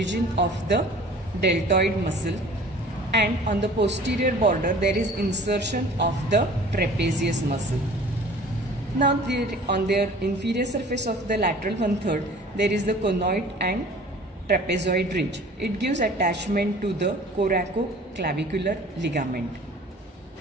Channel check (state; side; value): normal; both; correlation 0.47